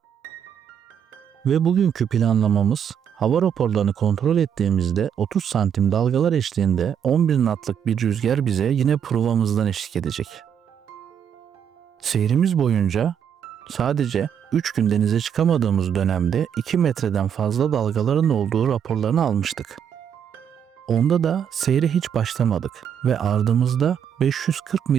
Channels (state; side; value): quieter; left; 8.4 dB